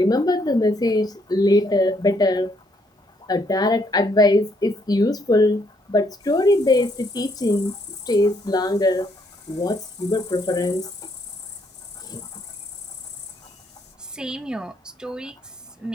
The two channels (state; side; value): normal; both; correlation 0.71